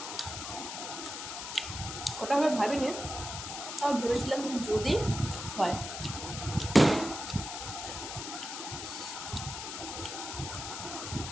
ওটা আমি ভাবিনি, তাও ভেবেছিলাম যে যদি হয়।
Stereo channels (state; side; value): noise; left; hiss, 7 dB below the sound